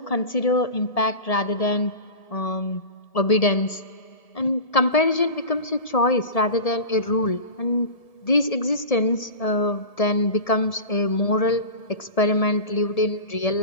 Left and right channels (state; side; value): late; right; 1.7 ms